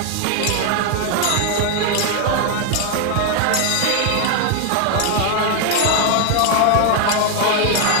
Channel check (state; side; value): different; both; correlation 0.00